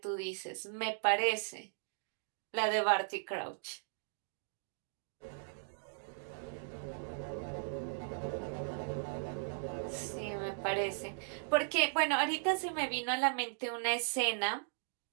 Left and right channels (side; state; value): left; silent; digital silence